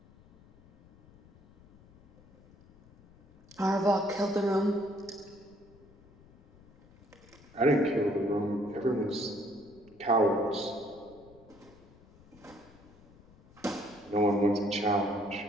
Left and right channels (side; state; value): left; noise; rumble, 25 dB below the sound